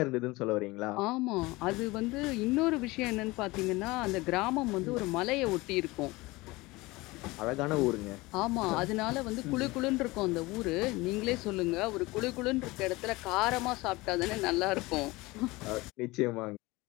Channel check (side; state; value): right; quieter; 21.7 dB